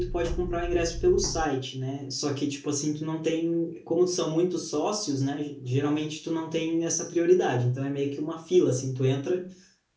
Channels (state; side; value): identical; both; correlation 1.00